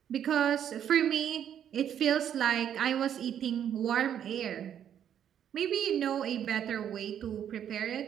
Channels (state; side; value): quieter; left; 9.5 dB